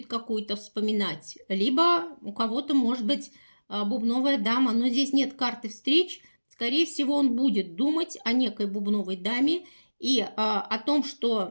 какую-то вспоминать, либо у кого-то может быть бубновая дама, но здесь нет карты встреч. Скорее всего, он будет думать о некой бубновой даме и о том,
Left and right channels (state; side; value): inverted; both; correlation -1.00